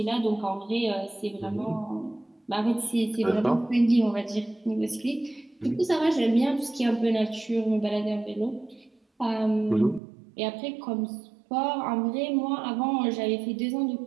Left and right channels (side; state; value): left; drops out; at 10.0 s